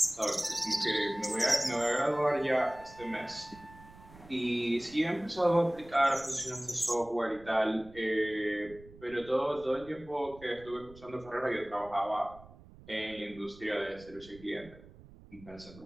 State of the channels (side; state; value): right; noise; rumble, 21 dB below the sound